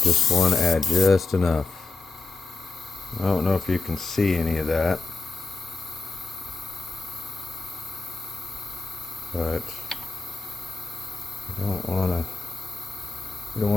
want to add just enough. I don't know if you can see any of that, but we don't want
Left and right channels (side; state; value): right; quieter; 3.9 dB